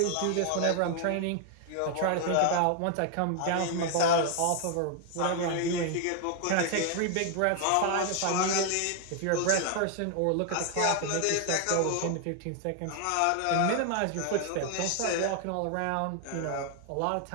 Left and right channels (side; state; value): both; different; correlation 0.00